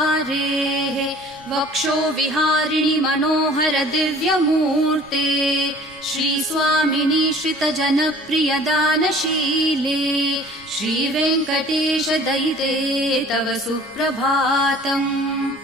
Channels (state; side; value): noise; right; rumble, 27 dB below the sound